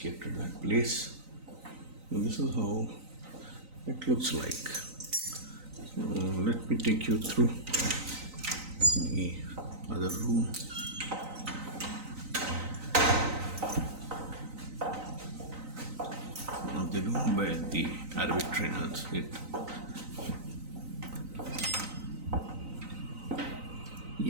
at that place. So this is how it looks like. So let me take you through the other room. One of the room where the Arabic trainers sit.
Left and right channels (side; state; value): left; late; 3.9 ms